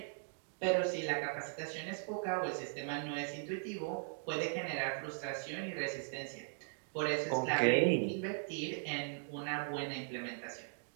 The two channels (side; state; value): left; silent; digital silence